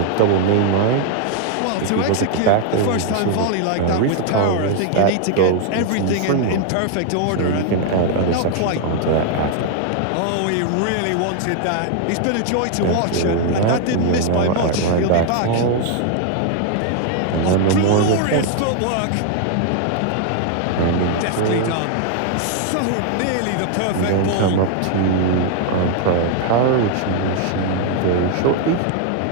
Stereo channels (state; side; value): different; both; correlation 0.00